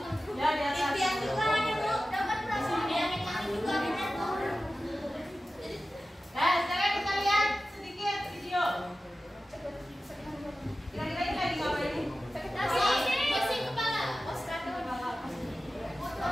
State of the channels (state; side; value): normal; both; correlation 0.95